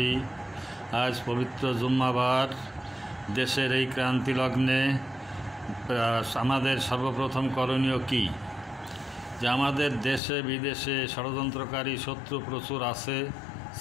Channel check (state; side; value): drops out; right; at 10.2 s